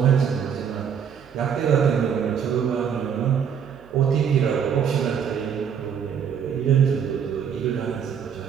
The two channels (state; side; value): quieter; left; 7.7 dB